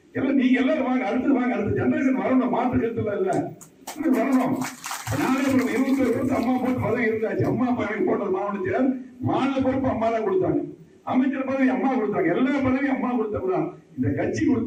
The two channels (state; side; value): identical; both; correlation 1.00